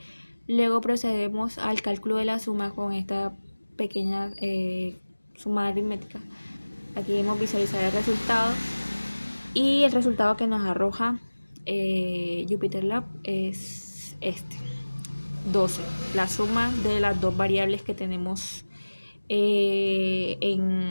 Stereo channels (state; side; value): inverted; both; correlation -1.00